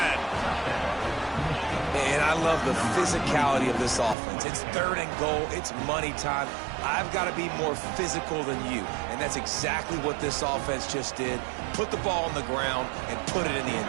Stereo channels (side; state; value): left; drops out; at 4.2 s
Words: And I love the physicality of this offense. It's 3rd and goal. It's money time. I've got to be more physical than you. And that's exactly what this offense just did. Put the ball on the ground and put it in the